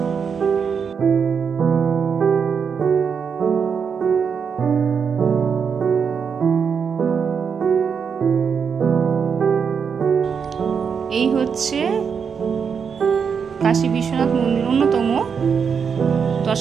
এই হচ্ছে কাশী বিশ্বনাথ মন্দির অন্যতম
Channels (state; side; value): quieter; left; 6.5 dB